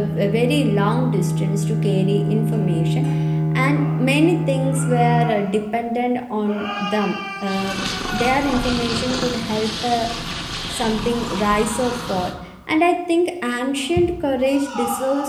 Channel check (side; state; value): both; identical; correlation 1.00